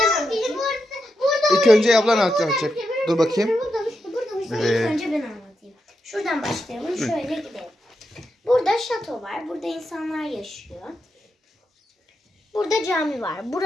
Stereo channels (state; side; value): normal; both; correlation 0.86